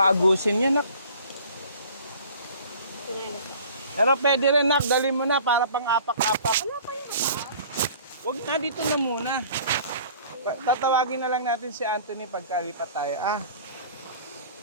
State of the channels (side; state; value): both; inverted; correlation -0.48